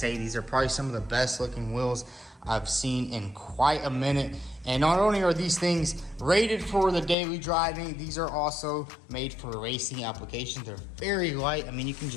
these are probably some of the best looking wheels I've seen in quite a minute. And not only are these things rated for the daily driving, these are also made for racing applications. They're very light. I mean, you can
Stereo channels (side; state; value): right; drops out; at 7.2 s